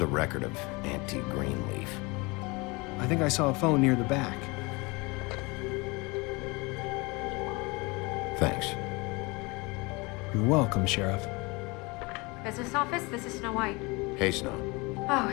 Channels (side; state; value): right; quieter; 26.1 dB